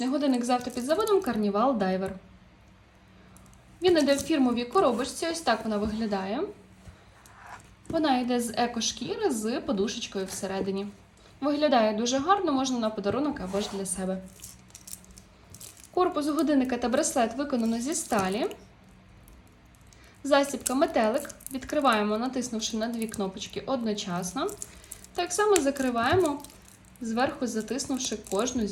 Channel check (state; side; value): identical; both; correlation 1.00